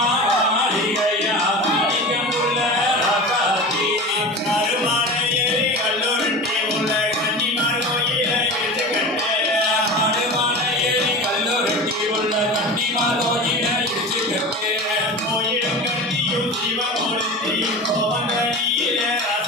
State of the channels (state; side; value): normal; both; correlation 0.31